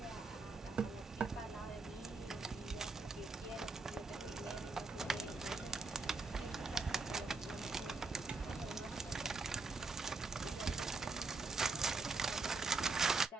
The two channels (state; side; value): quieter; left; 3.9 dB